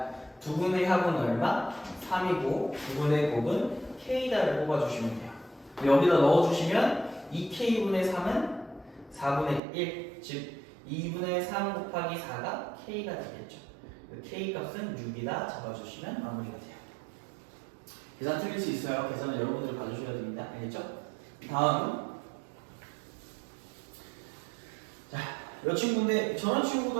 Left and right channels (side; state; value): left; drops out; at 9.6 s